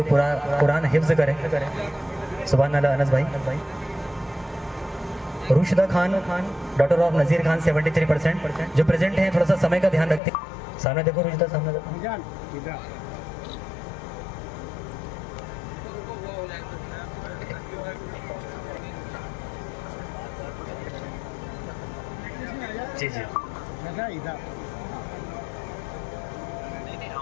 पूरा कुरान हिफ्ज करे, सुभान अल्लाह। अनस भाई। रुशिदा खान, डॉटर ऑफ नज़ीर खान 73% जो प्रेजेंट हैं, थोड़ा सा समय का ध्यान रखते हैं। सामने देखो रुशिदा, सामने देखो। जी जी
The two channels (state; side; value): drops out; right; at 10.2 s